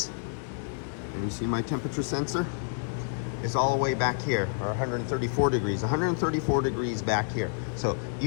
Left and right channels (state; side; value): silent; right; digital silence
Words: And you see my temperature sensor? It's all the way back here, or 134 degrees. 134 degrees back here. So